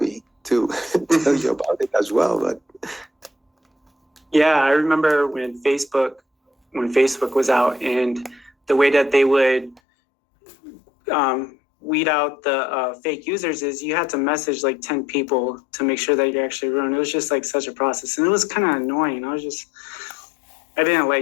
to tell you about it as well. But yeah, I remember when Facebook was out, and the way that they would weed out the fake users is you had to message like 10 people to make sure that you're actually real. And it was just like such a process, and it was kind of annoying. I didn't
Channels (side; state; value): right; drops out; at 9.8 s